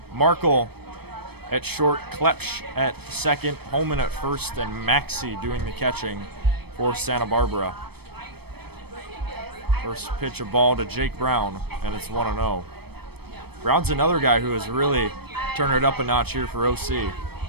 Markle at short, Klepsch at second, Holman at first, and Maxey doing the catching for Santa Barbara. First pitch of ball to Jake Brown, and it's 1-0. Brown's another guy who has really turned it up a notch here for OC.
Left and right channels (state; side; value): late; left; 0.97 ms